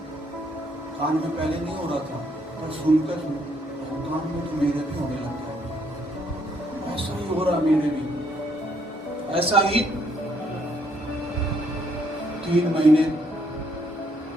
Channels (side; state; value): both; normal; correlation 0.70